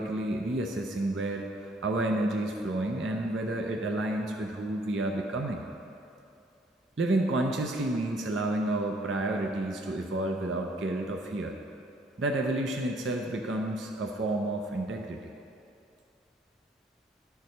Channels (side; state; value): both; normal; correlation 0.63